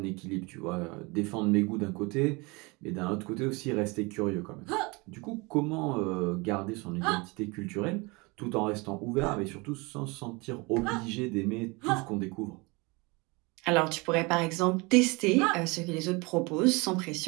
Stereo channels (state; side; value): quieter; left; 26.5 dB